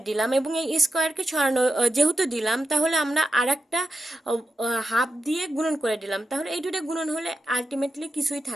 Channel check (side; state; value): both; normal; correlation 0.88